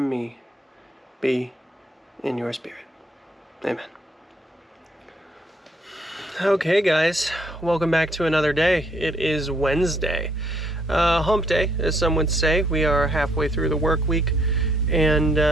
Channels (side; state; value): both; normal; correlation 0.69